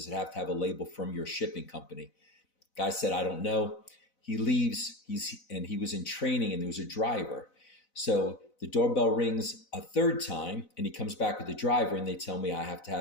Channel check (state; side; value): late; right; 4.0 ms